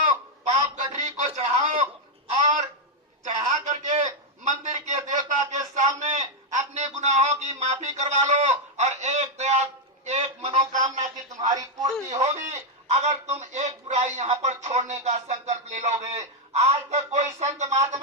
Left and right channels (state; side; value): normal; both; correlation 0.00